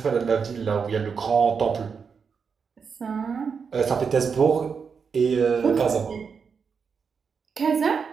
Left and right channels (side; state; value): left; quieter; 5.9 dB